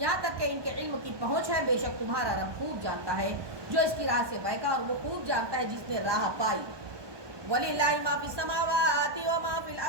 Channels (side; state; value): left; late; 1.2 ms